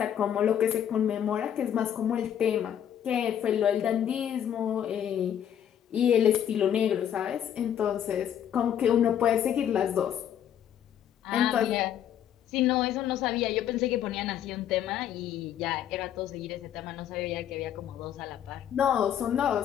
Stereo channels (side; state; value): right; quieter; 9.8 dB